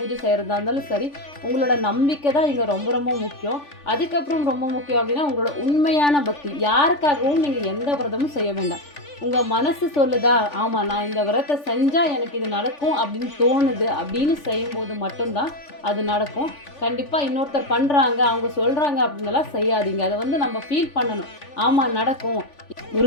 செய்கிறதா இருந்தாலும் சரி, உங்களோட நம்பிக்கை தான் இங்கே ரொம்ப ரொம்ப முக்கியம். அதுக்கப்புறம் ரொம்ப முக்கியம் அப்படின்னா உங்களோட உண்மையான பக்தி. யாருக்காகவும் நீங்கள் எந்த விரதமும் செய்ய வேண்டாம். உங்கள் மனசு சொல்லுதா, ஆமாம் நான் இந்த விரதத்தை செஞ்சால் எனக்கு இது நடக்கும் அப்படின்னு தோணுது அப்படின்னு செய்யும்போது மட்டும்தான் அது நடக்கும். கண்டிப்பாக இன்னொருத்தர் பண்ணுறாங்க அவங்க சொல்கிறாங்க அப்படின்னலாம் செய்யாதீங்க. அதை வந்து நம்ம ஃபீல் பண்ணணும். ஆமாம் நடக்கும்.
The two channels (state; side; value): late; right; 3.4 ms